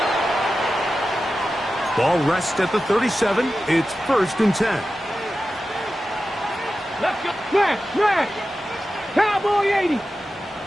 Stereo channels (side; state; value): both; normal; correlation 0.93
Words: Ball rests at the 37. It's first and 10. Let's go. Smash. Cowboy 80.